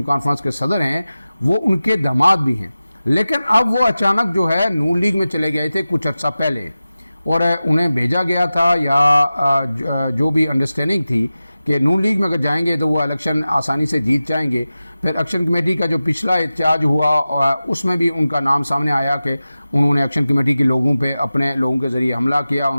कॉन्फ्रेंस के सदर हैं, वो उनके दामाद भी हैं। लेकिन अब वो अचानक जो है नून लीग में चले गए थे कुछ अर्सा पहले, और उन्हें भेजा गया था या जो भी अंडरस्टैंडिंग थी कि नून लीग में अगर जाएंगे तो वो इलेक्शन आसानी से जीत जाएंगे। फिर एक्शन कमेटी का जो पिछला एहतजाज हुआ उसमें भी उनका नाम सामने आया कि उन्होंने एक्शन कमेटी के लोगों पे अपने लोगों के ज़रिए हमला किया,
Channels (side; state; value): both; inverted; correlation -0.95